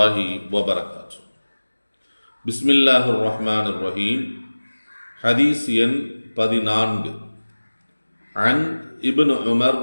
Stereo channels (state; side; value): inverted; both; correlation -1.00